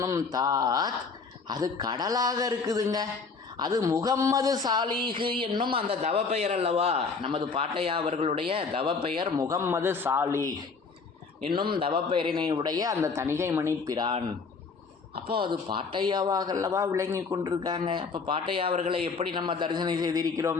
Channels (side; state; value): right; quieter; 4.8 dB